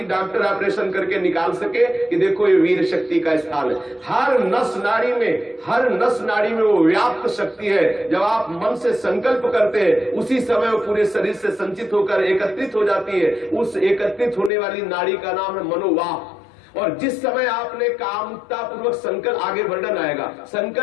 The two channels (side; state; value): right; drops out; at 14.5 s